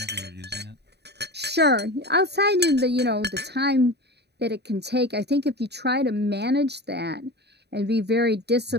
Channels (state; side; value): late; left; 0.48 ms